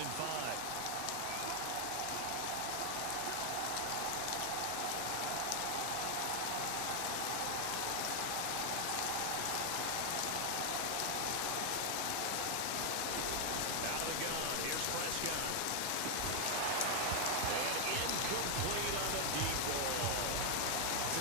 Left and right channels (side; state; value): both; different; correlation 0.00